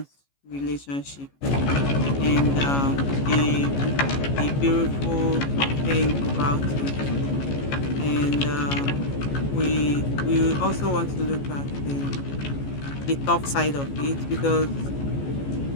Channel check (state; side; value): late; right; 14 ms